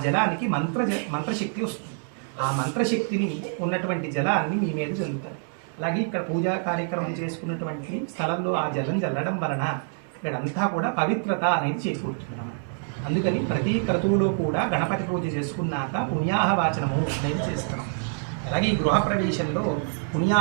జలానికి మంత్రశక్తి వస్తుంది. ఆ మంత్రశక్తిని ఉన్నటువంటి జలాన్ని మీ మీద చల్లుతారు. అలాగే ఇక్కడ పూజా కార్యక్రమం చేసుకున్నటువంటి స్థలంలో ఆ జలం చల్లడం వలన ఇక్కడంతా కూడా పవిత్రత అనేది చేకూరుతున్నాము. అందుకని ప్రతి క్రతువులో కూడా గణపతి పూజ చేసుకున్నాక పుణ్యాహవాచనము అనేది చేస్తున్నాం. అలాగే ఈ గృహప్రవేశంలో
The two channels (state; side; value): silent; left; 60 dB below the other